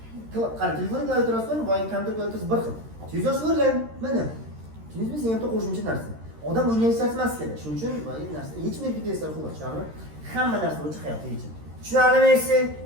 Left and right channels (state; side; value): late; left; 13 ms